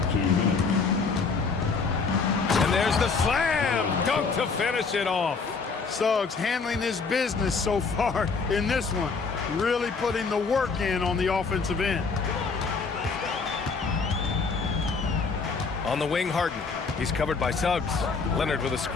And there's the slam dunk to finish it off. Suggs handling his business so far in this one. Really putting the work in on the offensive end. On the wing, Harden. He's covered by Suggs. Leonard with a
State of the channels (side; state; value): right; quieter; 4.8 dB